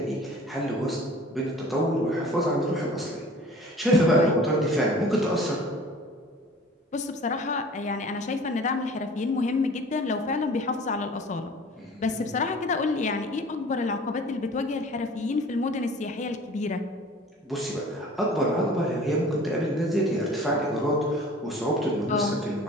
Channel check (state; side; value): normal; both; correlation 0.45